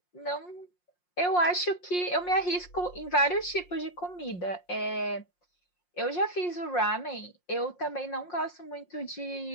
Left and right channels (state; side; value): late; right; 5.6 ms